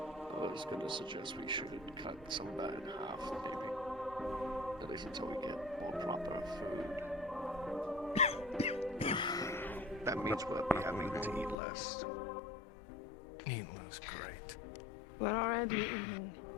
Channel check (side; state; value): right; drops out; at 11.6 s